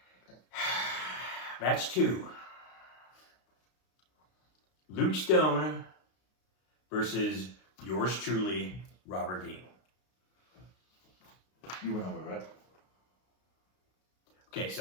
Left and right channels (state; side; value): late; right; 32 ms